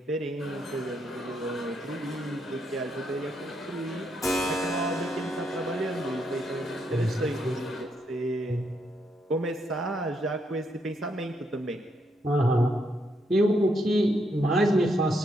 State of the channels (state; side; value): normal; both; correlation 0.77